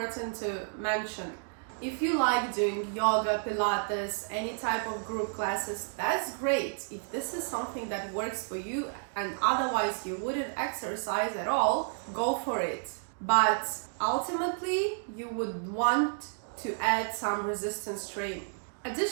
to mention, if you like doing yoga, Pilates, any type of group classes, that's great. If this is something that works for you and otherwise you wouldn't exercise at all, go for it. But ultimately, you would want to add some resistance training.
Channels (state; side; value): silent; left; digital silence